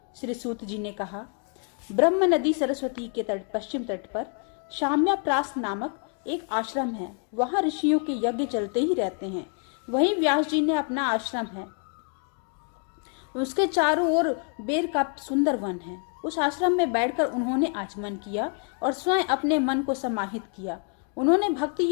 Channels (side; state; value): right; quieter; 39.6 dB